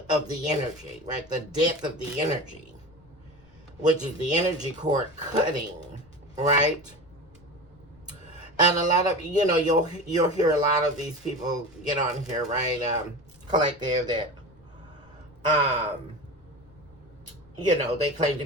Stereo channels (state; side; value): noise; left; rumble, 30 dB below the sound